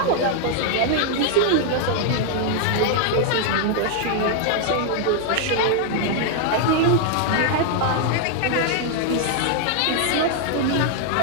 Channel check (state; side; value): different; both; correlation 0.00